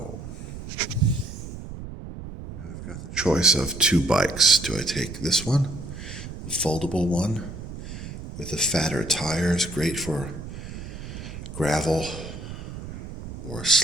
Now I've got the choice of two bikes. Do I take this one, the foldable one, with the fatter tires, great for gravel or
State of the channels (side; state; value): right; noise; rumble, 10 dB below the sound